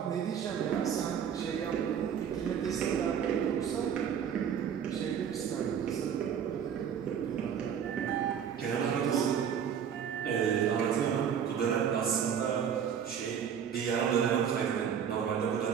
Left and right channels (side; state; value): left; quieter; 8.1 dB